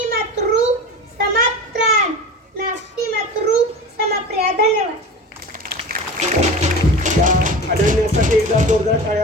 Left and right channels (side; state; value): both; normal; correlation 0.33